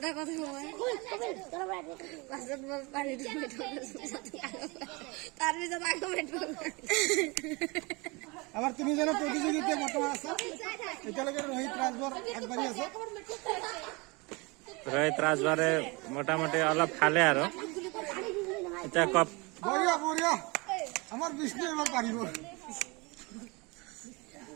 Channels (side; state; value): left; quieter; 26.9 dB